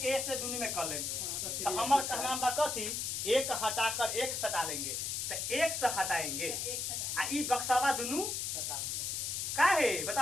दूनी में कर लेंगे। तो हमारे कहना बा कथी, एक हटाकर एक सटा लेंगे। तो एक से हटाएंगे आ ई बक्सावा दुनू का है,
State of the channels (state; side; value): noise; left; hiss, 2 dB below the sound